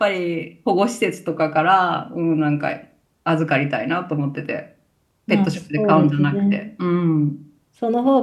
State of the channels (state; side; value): identical; both; correlation 1.00